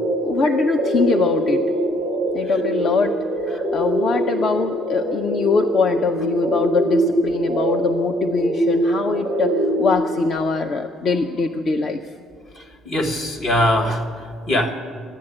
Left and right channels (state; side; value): normal; both; correlation 0.65